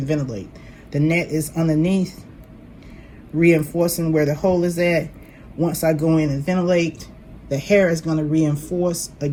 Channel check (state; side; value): identical; both; correlation 1.00